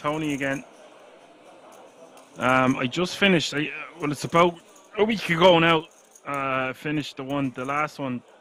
again. I just finished, well, it's about a week ago now. Finished the last one.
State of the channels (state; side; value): identical; both; correlation 1.00